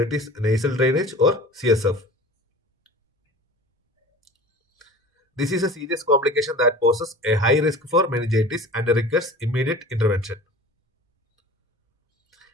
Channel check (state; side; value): normal; both; correlation 0.40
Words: is nasal drainage or CSF. This is a serious complication that poses a high risk for meningitis and requires immediate intervention.